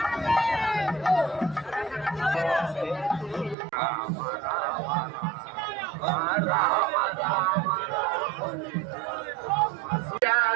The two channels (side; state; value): left; drops out; at 3.6 s